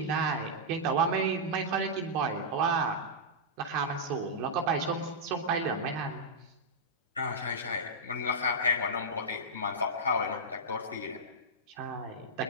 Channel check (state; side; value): normal; both; correlation -0.09